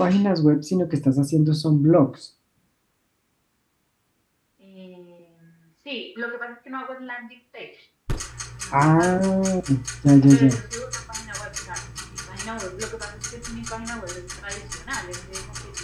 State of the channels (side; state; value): both; identical; correlation 1.00